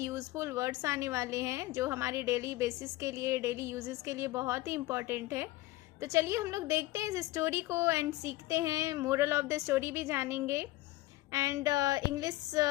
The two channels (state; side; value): quieter; right; 18.1 dB